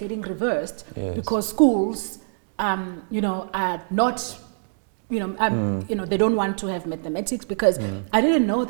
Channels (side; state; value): left; silent; digital silence